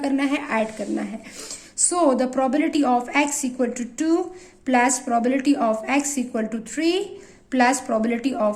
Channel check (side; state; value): both; identical; correlation 1.00